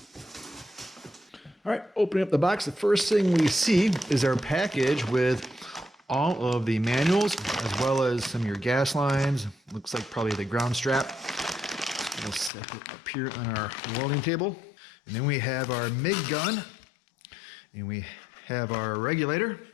All right, opening up the box, the first thing we see is our package with all of the manuals, as well as some of your gas lines. Looks like probably the ground strap. We'll set it up here on our welding table. And then we have our MIG gun, and we have our regulator.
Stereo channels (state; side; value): drops out; right; at 12.5 s